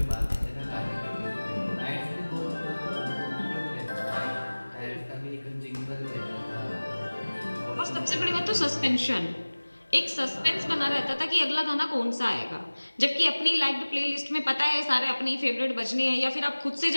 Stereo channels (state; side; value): inverted; both; correlation -1.00